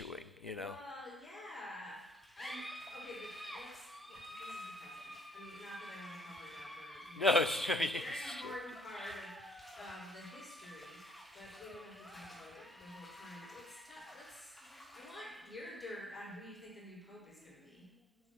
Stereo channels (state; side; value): normal; both; correlation 0.64